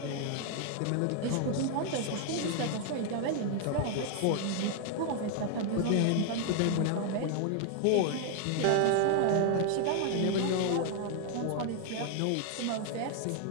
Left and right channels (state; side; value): different; both; correlation 0.00